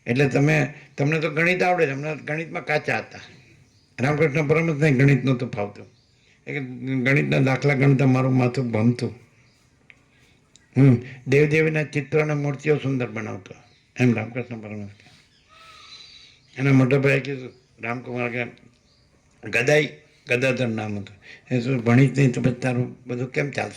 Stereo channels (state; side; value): identical; both; correlation 1.00